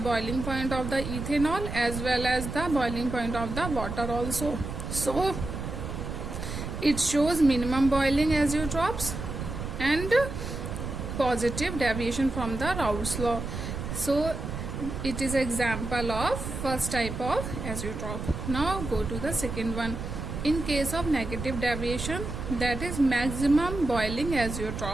point of the ethanol as well as the boiling point of the water also. So it shows minimum boiling azeotropes and positive deviation from the Raoult's law. So it is example of first type of azeotrope. Now go to the second one. In case of negative deviation, that is maximum boiling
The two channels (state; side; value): noise; right; rumble, 6 dB below the sound